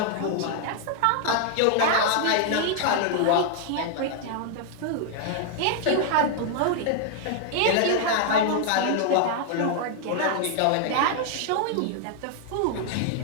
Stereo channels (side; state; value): both; different; correlation 0.00